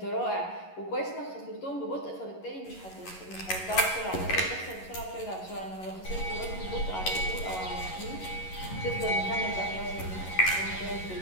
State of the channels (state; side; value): late; right; 11 ms